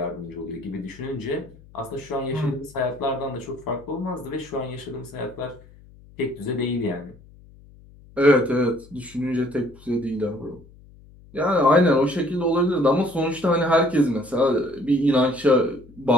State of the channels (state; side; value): noise; left; hum, 23 dB below the sound